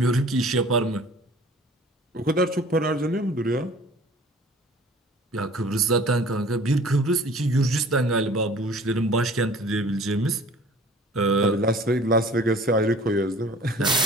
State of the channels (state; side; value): normal; both; correlation 0.48